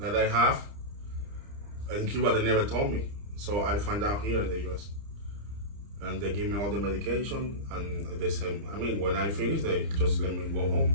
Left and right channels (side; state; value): left; late; 30 ms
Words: I have in Cuba, they never told me. So I find out here in the US. And they give me all the medication and they say, I mean, when I finish, they just let me go home.